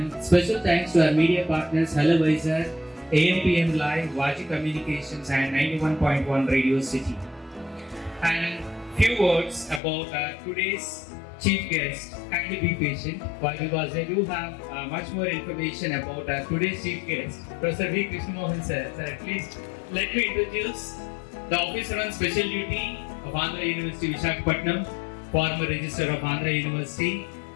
special thanks to our media partners Hello Vizag, AMPM Live, Vaji Communications and 91.1 Radio City. And few words about today's chief guest. Kindly be patient, because I do have much more information about today's chief guest, Professor V. Krishnamohan sir. Sir, at least let me introduce the officer on special duty of Andhra University Visakhapatnam, former registrar of Andhra University,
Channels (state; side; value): drops out; right; at 9.8 s